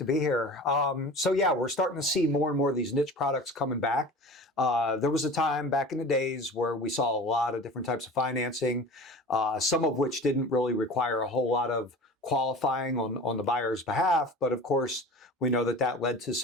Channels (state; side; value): normal; both; correlation 0.37